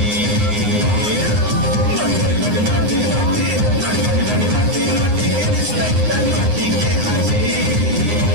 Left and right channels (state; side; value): late; left; 9.7 ms